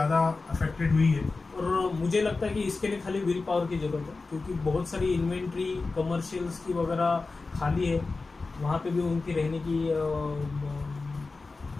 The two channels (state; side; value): quieter; right; 3.8 dB